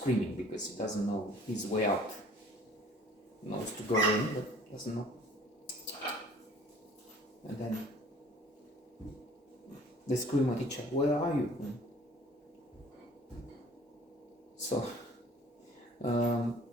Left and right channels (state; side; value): normal; both; correlation 0.52